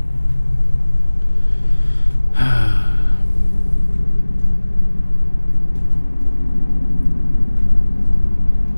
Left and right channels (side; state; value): both; inverted; correlation -1.00